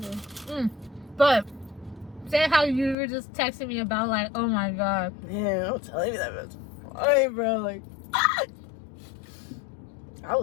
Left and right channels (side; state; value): right; drops out; at 3.0 s